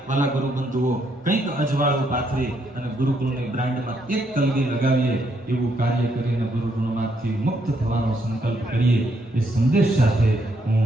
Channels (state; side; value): normal; both; correlation 0.74